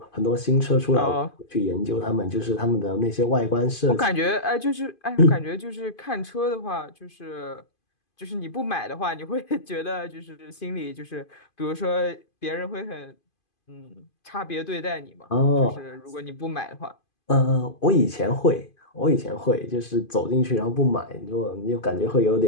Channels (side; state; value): right; late; 2.5 ms